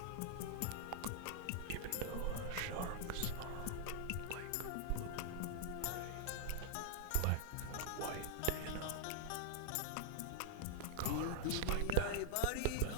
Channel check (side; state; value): both; different; correlation -0.01